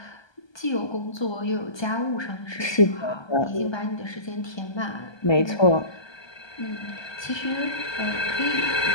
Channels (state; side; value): late; right; 1.2 ms